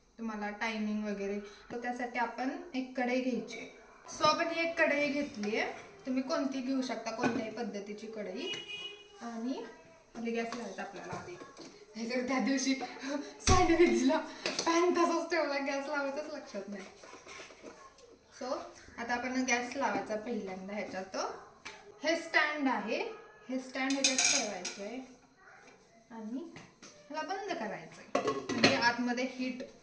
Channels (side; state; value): both; identical; correlation 1.00